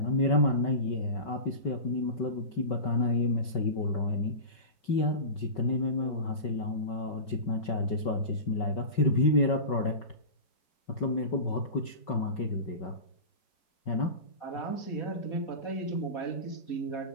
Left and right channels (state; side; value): late; right; 5.3 ms